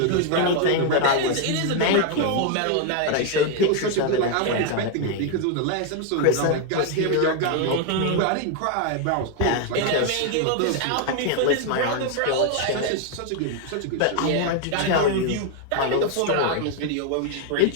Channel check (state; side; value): different; both; correlation 0.00